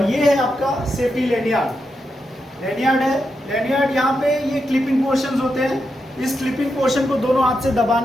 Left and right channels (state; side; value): normal; both; correlation 0.85